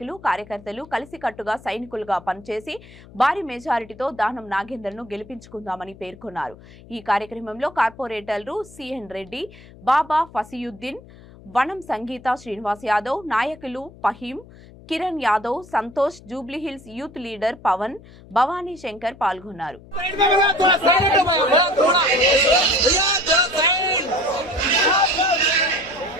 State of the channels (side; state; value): left; noise; hum, 21 dB below the sound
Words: కార్యకర్తలు కలిసికట్టుగా సైనికులుగా పనిచేసి భారీ మెజారిటీతో దానం నాగేందర్ ను గెలిపించుకుందామని పేర్కొన్నారు. ఈ కార్యక్రమంలో కార్పొరేటర్లు సిఎన్ రెడ్డి, బాబా ఫసియుద్దీన్, వనం సంగీత శ్రీనివాస్ యాదవ్, నాయకులు ఫహీం, కిరణ్ యాదవ్, సంతోష్, జూబ్లీహిల్స్ యూత్ లీడర్ పవన్, భవానీ శంకర్ పాల్గొన్నారు.